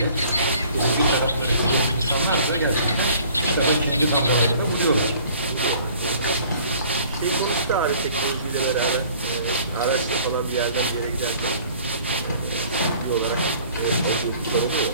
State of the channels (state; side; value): inverted; both; correlation -0.53